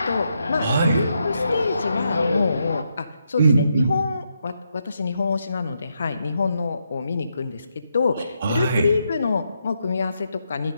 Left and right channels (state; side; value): inverted; both; correlation -0.81